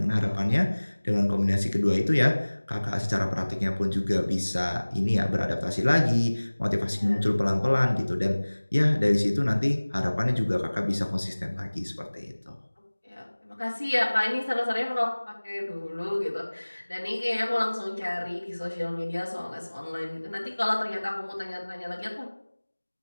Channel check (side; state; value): both; inverted; correlation -1.00